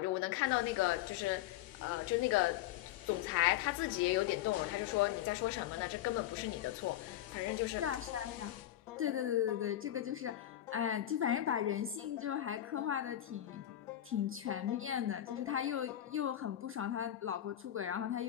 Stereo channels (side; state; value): right; quieter; 12.7 dB